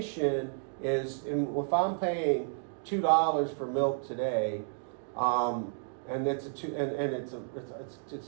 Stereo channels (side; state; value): left; silent; digital silence